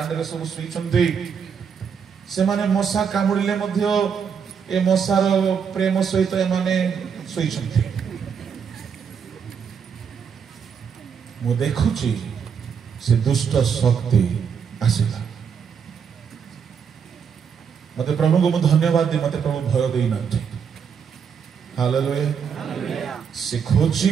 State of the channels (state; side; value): quieter; left; 6.9 dB